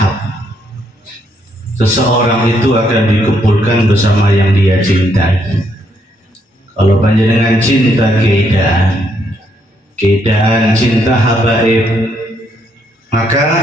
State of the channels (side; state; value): both; normal; correlation 0.74